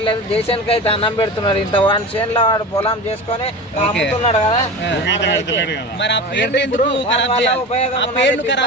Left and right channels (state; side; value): normal; both; correlation 0.30